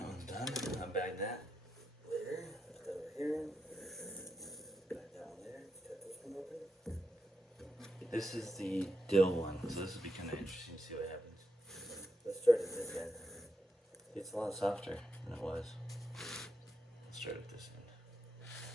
one's done. I'll bag that later. Put that over here. Bag that one there. Cut this one open. This is the dill one, so this will be kind of interesting to see what happens. Let's start at this end. It's a lot softer than it was. Let's start at this end.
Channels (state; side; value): normal; both; correlation 0.85